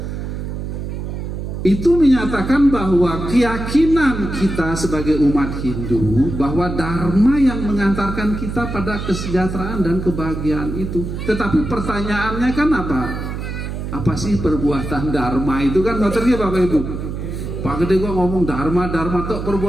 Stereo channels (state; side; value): noise; right; hum, 6 dB below the sound